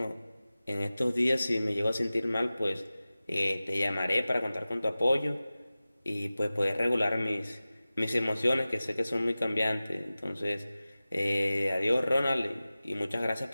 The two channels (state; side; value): inverted; both; correlation -0.96